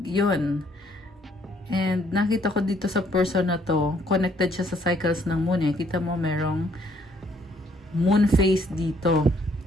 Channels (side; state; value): both; normal; correlation 0.66